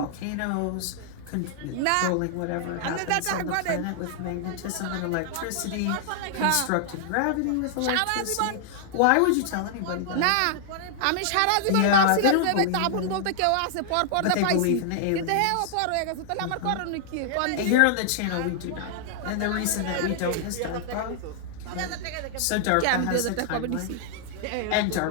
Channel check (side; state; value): both; different; correlation -0.01